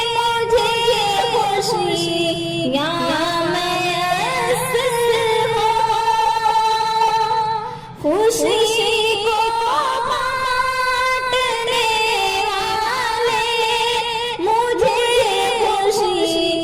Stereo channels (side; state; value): both; identical; correlation 1.00